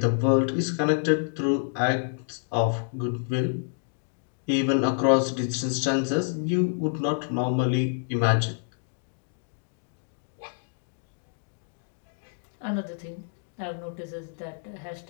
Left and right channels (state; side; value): silent; right; digital silence